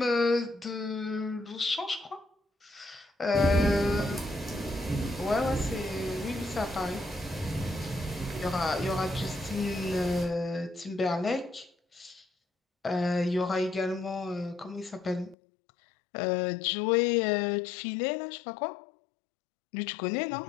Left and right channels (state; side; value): drops out; right; at 15.4 s